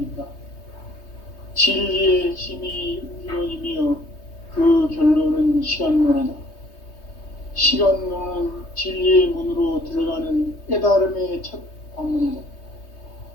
진리의 힘이 우주론이며 그 결론은 시간론이다. 시간론은 진리의 문으로 들어가는 깨달음의 첫 관문이다.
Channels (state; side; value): late; right; 3.2 ms